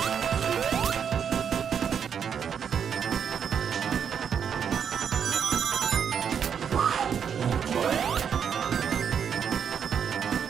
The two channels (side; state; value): left; quieter; 7.6 dB